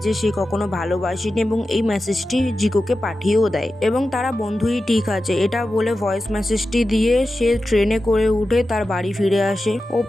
যে সে কখনো ভালোবাসেনি এবং এই মেসেজটি জিকোকে পাঠিয়েও দেয় এবং তারা বন্ধুই ঠিক আছে এটা বলে ভয়েস মেসেজটি দিয়ে সে ট্রেনে করে উঠে তার বাড়ি ফিরে আসে।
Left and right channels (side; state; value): both; normal; correlation 0.93